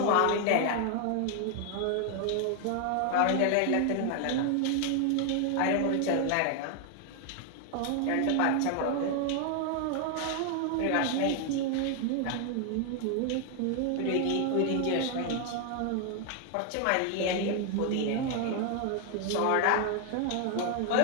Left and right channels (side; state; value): both; different; correlation 0.00